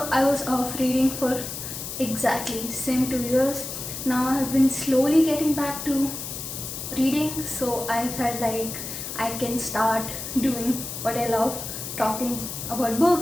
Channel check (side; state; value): left; noise; hiss, 7 dB below the sound